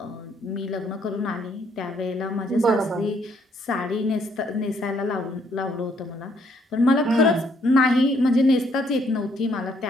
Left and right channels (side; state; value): both; normal; correlation 0.68